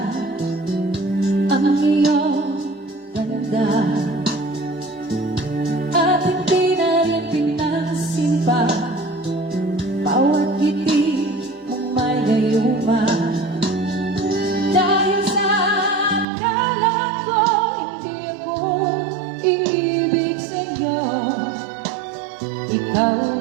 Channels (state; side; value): drops out; left; at 16.2 s